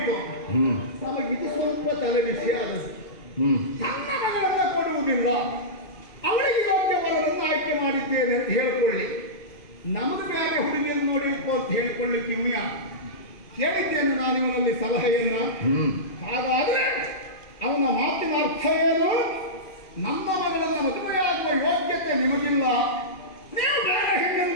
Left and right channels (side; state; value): right; late; 2.5 ms